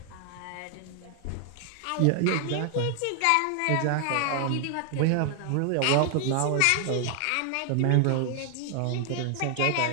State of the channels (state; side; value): different; both; correlation 0.00